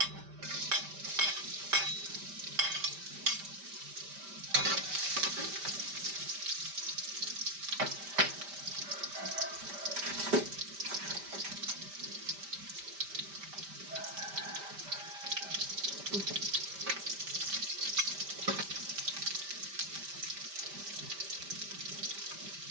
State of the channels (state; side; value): late; left; 5.1 ms